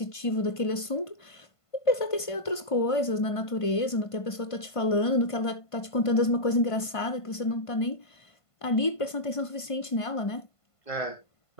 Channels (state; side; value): late; right; 1.5 ms